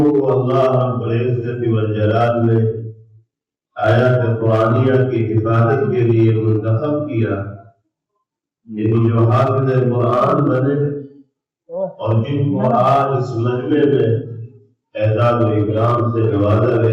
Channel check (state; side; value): identical; both; correlation 1.00